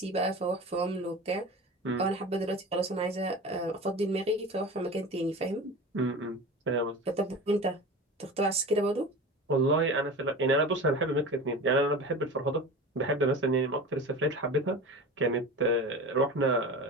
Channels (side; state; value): both; normal; correlation 0.33